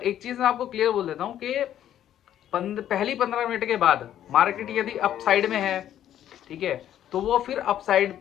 एक चीज़ मैं आपको क्लियर बोल देता हूँ कि पहली 15 मिनट के बाद मार्केट यदि अप साइड में है, ठीक है, तो वो फिर अप साइड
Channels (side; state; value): right; quieter; 11.2 dB